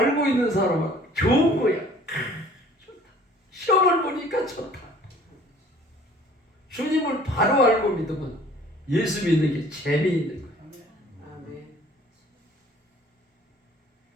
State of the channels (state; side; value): normal; both; correlation 0.52